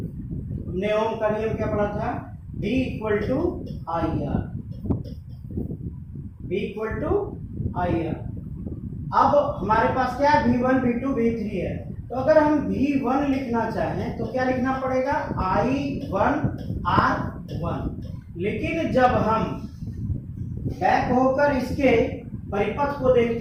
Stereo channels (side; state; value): both; identical; correlation 1.00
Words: हमने ओम का नियम क्या पढ़ा था, V equal to I R, V equal to I R. अब हमारे पास क्या है, V1 V2 V3 है, तो तो अगर हम V1 लिखना चाहें तो क्या लिखना पड़ेगा, I1R1। लेकिन जब हम बैक होकर इसके परिपथ को